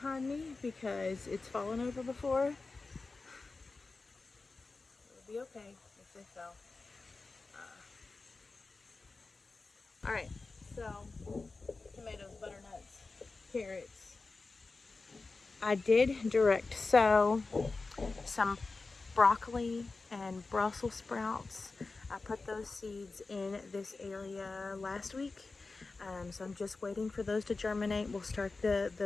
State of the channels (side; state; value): right; quieter; 3.8 dB